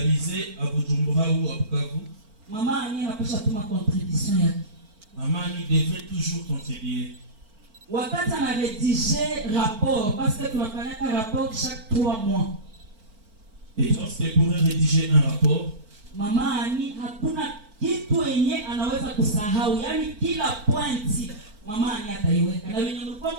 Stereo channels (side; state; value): left; late; 4.4 ms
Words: à Bujumbura ou à Bukavu, mama Annie anapaswa tuma contribution yake. Maman Annie devait toujours contribuer. Wakati anaredige rapport, parce que tunafanyaka rapport chaque 3 mois. Et lorsqu'elle pourrait rédiger un rapport, mama Annie hakuna kitu yenye anaweza kusahau, yani kila pointi mama Annie ataiweka, na wenye